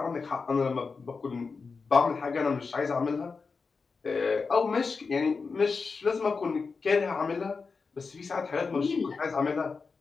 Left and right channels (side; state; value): right; quieter; 4.7 dB